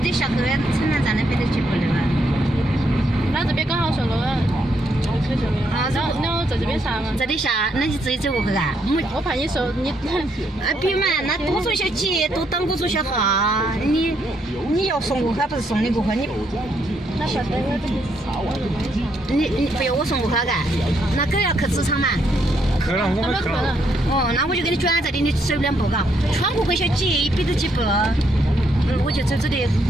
下去城南站那边的几步的嘛？那这边刚好上路了。啊，然后在这边下嘛。这里下，那你自己走过去啊？我怕你说你。别嘛，那多走些几，多等我走些哈。你要送过去，不是送你过去，那晓得我这里。你不要我送过去干？那狗要去职场嘛？去了，我们去了。哦，那我就给你转这里，你走2步嘎，穿过去小几100多几步，我就走这里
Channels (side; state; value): both; normal; correlation 0.75